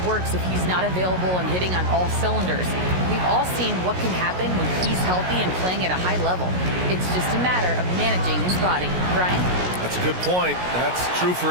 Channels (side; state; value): left; late; 16 ms